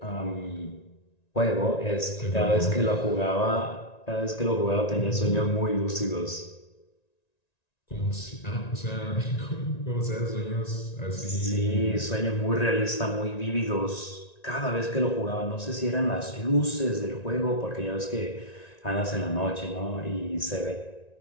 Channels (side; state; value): right; late; 1.9 ms